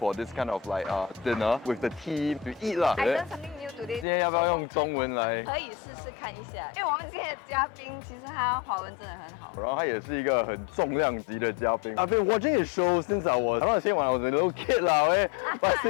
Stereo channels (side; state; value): right; drops out; at 4.0 s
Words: this kind of like dinner with the team to eat lah. I learned something new today. 今天要不要用中文来？可以试试看一下，因为我们今天的嘉宾其实他华文真的很好。然后他也是一个很重量级的嘉宾。I've been watching his show since I was when I was a little kid 啦，okay? But